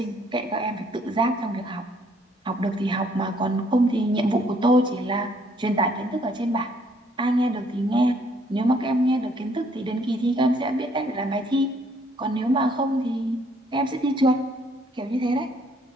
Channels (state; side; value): normal; both; correlation 0.65